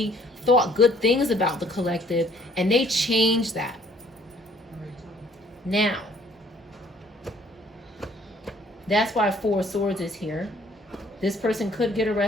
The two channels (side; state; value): both; normal; correlation 0.60